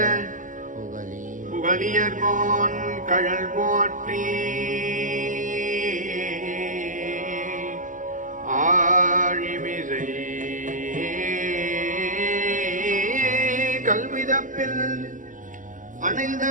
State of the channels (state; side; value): late; left; 0.38 ms